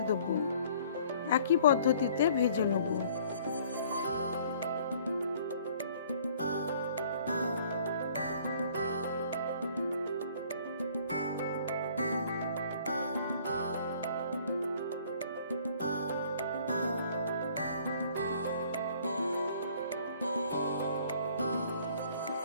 দেবো। একই পদ্ধতিতে ভেজে নেব।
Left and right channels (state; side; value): inverted; both; correlation -0.56